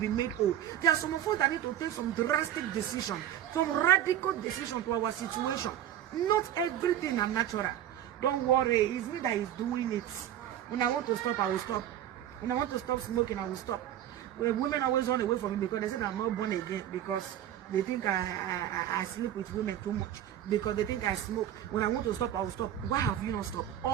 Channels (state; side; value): quieter; left; 11.3 dB